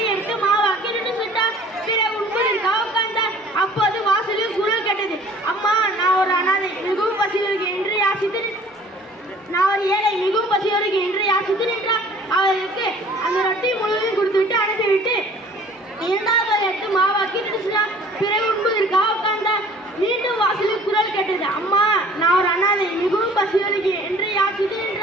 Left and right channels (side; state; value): both; normal; correlation 0.51